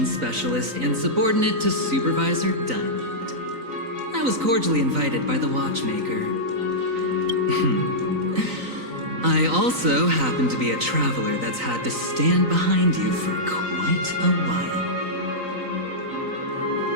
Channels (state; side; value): late; left; 3.9 ms